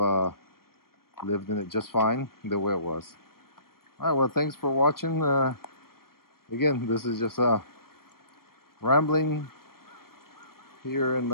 lived in it just fine the way it was. All right. Well, thanks for watching. Again, this is just rambling here in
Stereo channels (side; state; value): right; late; 0.93 ms